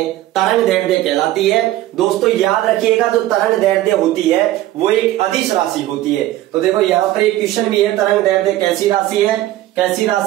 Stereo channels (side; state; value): left; quieter; 15.1 dB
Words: तरंग दैर्ध्य कहलाती है। दोस्तों याद रखिएगा, जो तरंग दैर्ध्य होती है वो एक अदिश राशि होती है। तो देखो यहां पर एक क्वेश्चन भी है, तरंग दैर्ध्य कैसी राशि है, कैसी